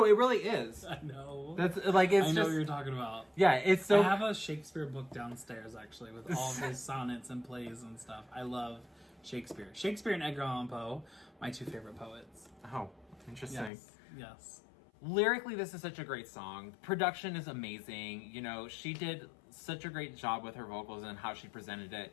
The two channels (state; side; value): drops out; right; at 13.7 s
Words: it really is. I know. That's like it's. I know just, what you're talking about. Yeah, it's so. I have a Shakespeare book downstairs actually with all of his sonnets and plays and stuff. I love Shakespeare. Shakespeare and Edgar Allan Poe, my 2 favorite poets. Oh, interesting. Yes. Lyrically, this is such a great song. Production is amazing. She did such a great job with her vocals and how she presented it.